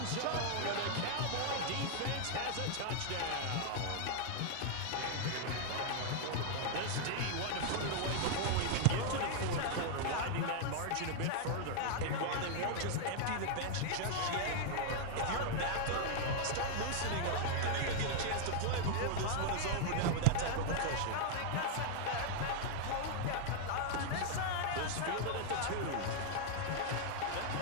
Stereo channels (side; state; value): both; different; correlation 0.00